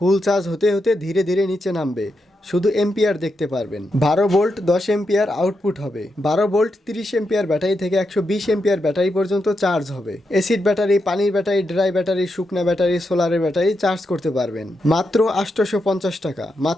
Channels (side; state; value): both; normal; correlation 0.85